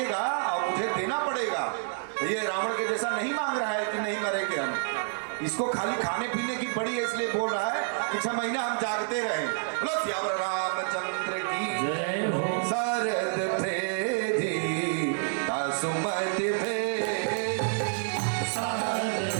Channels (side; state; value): left; silent; digital silence